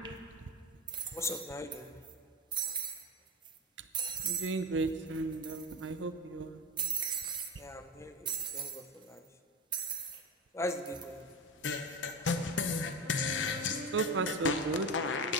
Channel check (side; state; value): both; normal; correlation 0.23